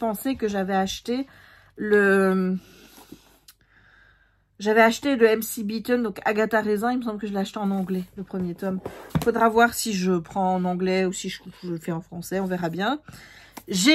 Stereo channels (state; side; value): identical; both; correlation 1.00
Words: que j'avais acheté le MC Beaton, donc Agatha Raisin. Il me semble que je l'ai acheté en anglais, le premier tome. Il faudra voir si je prends en anglais ou si je le fais en français, on verra bien.